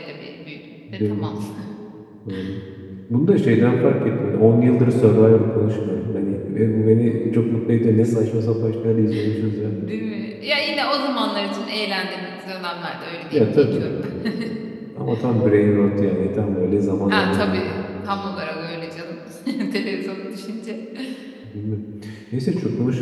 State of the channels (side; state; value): both; identical; correlation 1.00